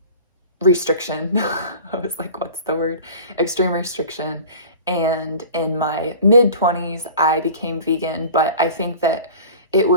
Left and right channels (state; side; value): inverted; both; correlation -0.40